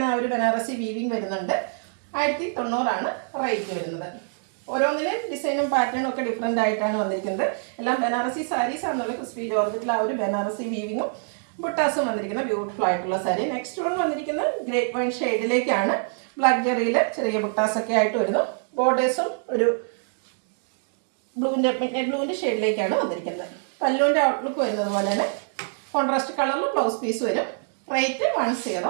ആ ഒരു ബനാറസി വീവിങ് വരുന്നുണ്ട്. 1090 റേറ്റ് വരുന്നത്. ഓരോന്നിലും ഡിസൈനും പാറ്റേണും ഒക്കെ ഡിഫറെൻ്റ് ആയിട്ടാണ് വന്നിരിക്കുന്നത്. എല്ലാം ബനാറസി സാരീസ് ആണെന്നുള്ള ക്രിസ്പി ജോർജറ്റിൽ ആ ഒരു ബനാറസി വീവിങ്ങും ബുട്ടാസും വന്നിരിക്കുന്ന ബ്യൂട്ടിഫുൾ ആയിട്ടുള്ള സാരി. നെക്സ്റ്റ് വൺ വന്നിരിക്കുന്നത് ഗ്രേപ്പ് വൈൻ ഷെയ്ഡിലേക്കാണ്. ബ്ലാക്ക് ജെറിയിൽ ചെറിയ ബുട്ടാസൊക്കെ ആയിട്ട് വരുന്നു. ബോർഡേഴ്സും ഒരു ബ്ലൂവിൻ്റെ ഷെയ്ഡിലേക്കാണ് വന്നിരിക്കുന്നത്. പല്ലുവിൻ്റെ ഔട്ട്ലുക്ക് വരുന്നത് പോലെ തന്നെ കോൺട്രാസ്റ്റ് കളറിൽ ബ്ലൗസ് പീസ് വരും. റേറ്റ്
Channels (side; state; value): left; silent; digital silence